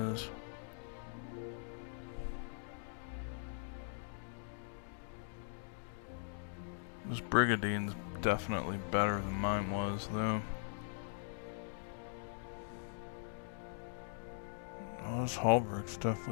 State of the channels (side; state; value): right; silent; digital silence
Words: This Brigadine's definitely better than mine was, though. Oh, this Halberg's